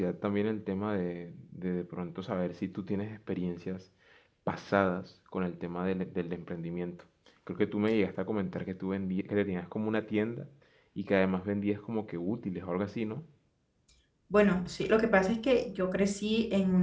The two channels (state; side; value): identical; both; correlation 1.00